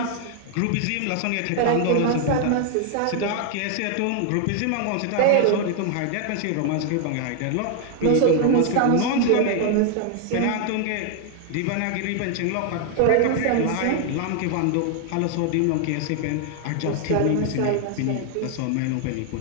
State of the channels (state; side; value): different; both; correlation 0.00